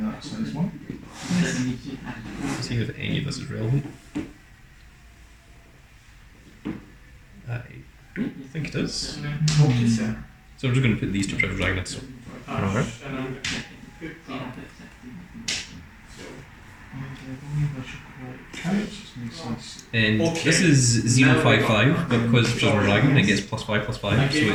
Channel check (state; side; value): identical; both; correlation 1.00